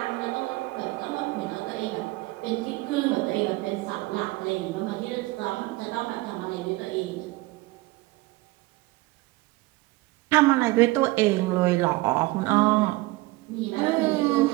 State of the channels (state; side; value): quieter; left; 21.0 dB